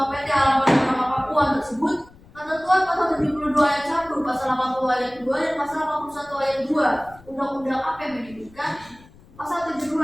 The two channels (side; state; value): left; noise; rumble, 24 dB below the sound